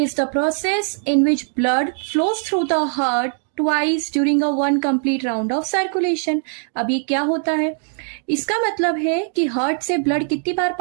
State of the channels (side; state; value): left; silent; 65 dB below the other